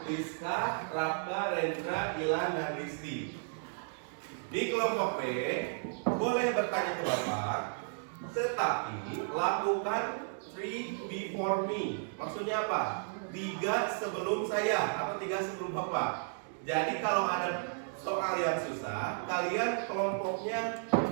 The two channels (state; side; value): silent; left; digital silence